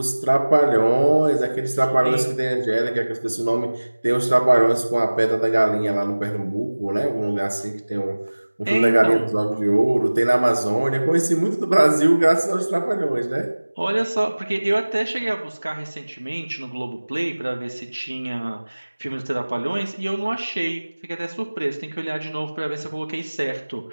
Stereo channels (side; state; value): both; inverted; correlation -1.00